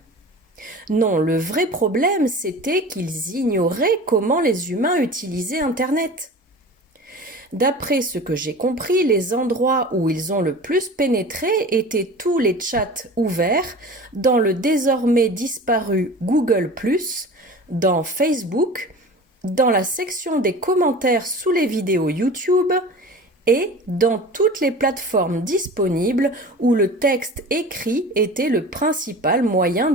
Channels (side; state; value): both; normal; correlation 0.37